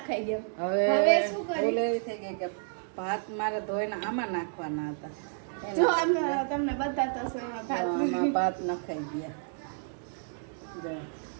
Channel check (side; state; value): left; silent; digital silence